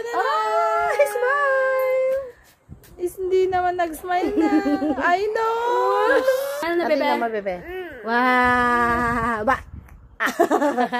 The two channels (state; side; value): identical; both; correlation 1.00